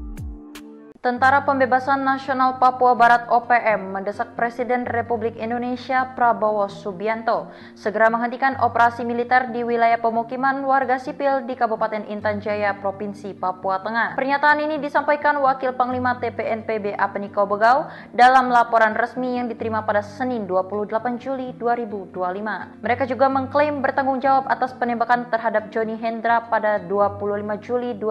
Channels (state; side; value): identical; both; correlation 1.00